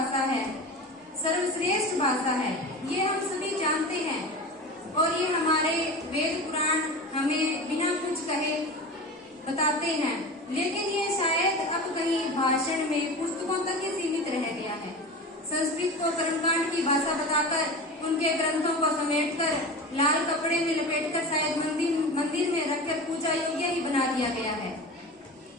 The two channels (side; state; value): both; normal; correlation 0.30